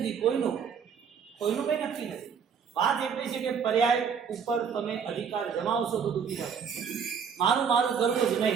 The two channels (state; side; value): quieter; left; 6.8 dB